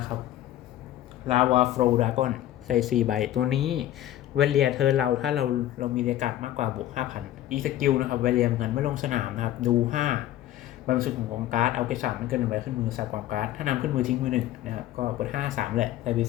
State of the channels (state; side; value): quieter; right; 13.2 dB